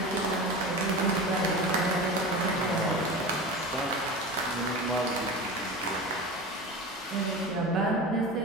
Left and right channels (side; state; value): both; normal; correlation 0.30